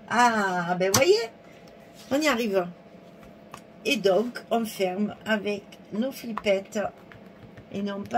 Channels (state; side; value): identical; both; correlation 1.00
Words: Ah, ben voyez, on y arrive. Et donc, on ferme avec nos flippettes et non